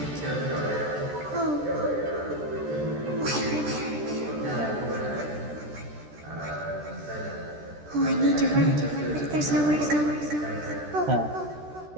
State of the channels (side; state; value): left; late; 13 ms